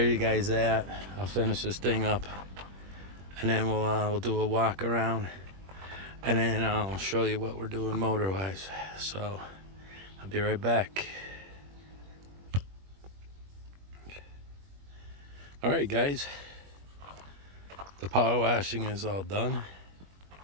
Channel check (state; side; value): late; left; 21 ms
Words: you guys that. I'll finish this thing up, and then we'll do a walk around, and then I'll show you what we're doing motor-wise. So I'll be right back. All right, guys. The power washing is all done.